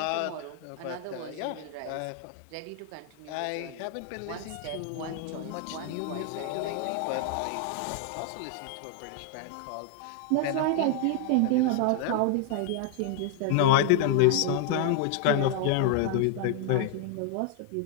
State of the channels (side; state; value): both; different; correlation -0.01